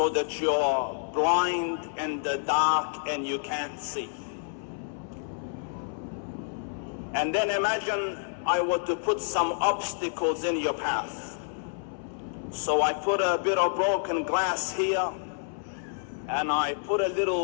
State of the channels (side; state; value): right; silent; 59 dB below the other